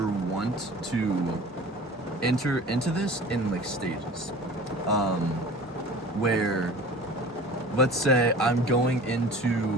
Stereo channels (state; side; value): normal; both; correlation 0.41